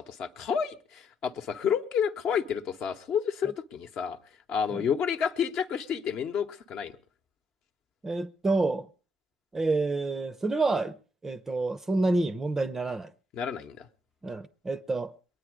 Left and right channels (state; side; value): normal; both; correlation 0.75